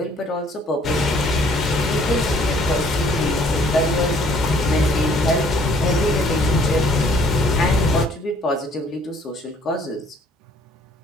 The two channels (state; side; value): normal; both; correlation 0.60